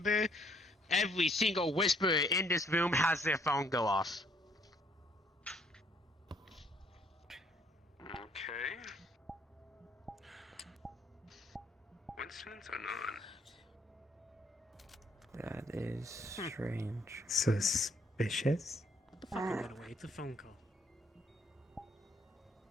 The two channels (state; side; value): normal; both; correlation 0.65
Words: Every single whisperer in this room has their phone go off. Okay. Coincidence or not? That is strange. Suspicious? Put the fucking gun away. It's a phone call.